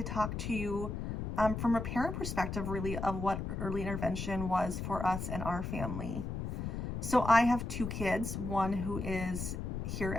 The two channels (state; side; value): noise; left; rumble, 4 dB below the sound